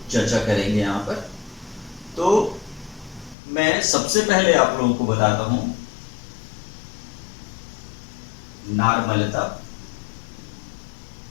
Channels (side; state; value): right; drops out; at 3.4 s